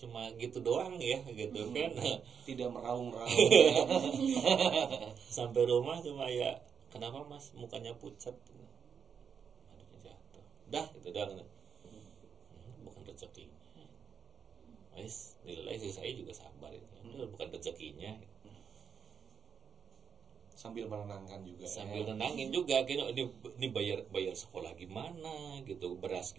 gitu doang ya gitu kan. Tidak meraung-raung. Sampai rumah cuma ya, kenapa Mas mukanya pucat? Aduh jatuh. Dah itu doang. Bukan rezeki. Wes, nilai sih saya juga sabar itu. Bukan rezekinya. Sambil menenangkan juga. Nenangin juga gitu, ini bayar sekolah gimana gitu, beras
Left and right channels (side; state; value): left; quieter; 6.9 dB